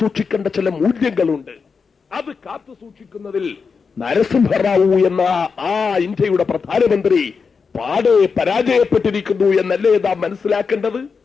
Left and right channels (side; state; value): right; quieter; 5.3 dB